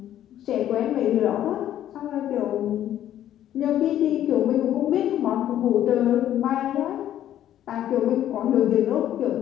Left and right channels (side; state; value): right; quieter; 11.7 dB